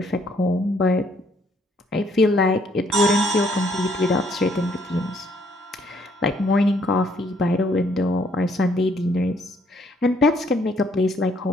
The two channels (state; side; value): normal; both; correlation 0.67